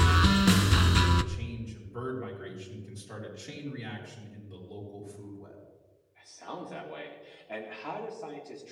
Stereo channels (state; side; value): identical; both; correlation 1.00